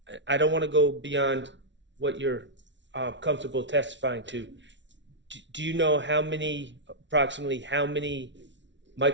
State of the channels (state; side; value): late; left; 0.53 ms